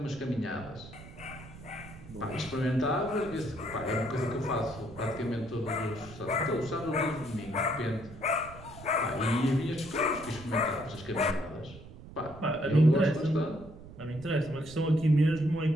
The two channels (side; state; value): right; noise; rumble, 16 dB below the sound